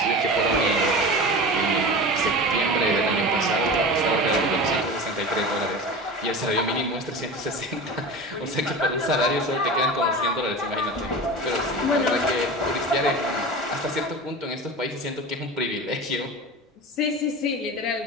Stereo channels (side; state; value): both; normal; correlation 0.31